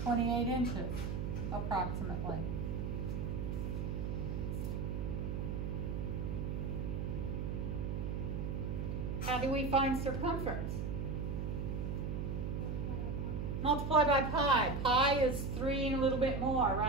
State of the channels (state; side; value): noise; right; hum, 2 dB below the sound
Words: 28 inches, approximately? How do we find circumference? Multiply by pi. Pi is 3 and a little bit more,